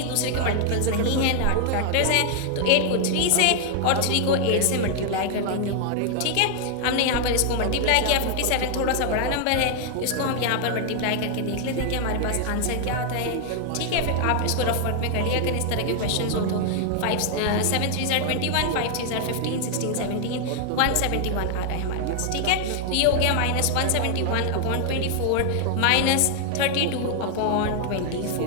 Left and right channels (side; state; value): both; different; correlation 0.00